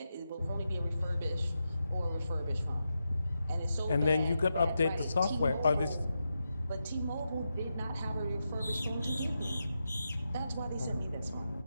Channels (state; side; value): inverted; both; correlation -0.88